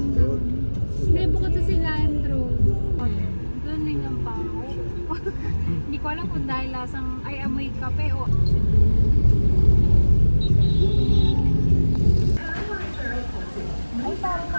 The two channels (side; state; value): both; inverted; correlation -1.00